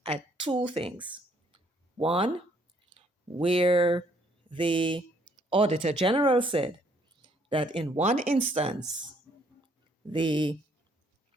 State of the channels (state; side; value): normal; both; correlation 0.66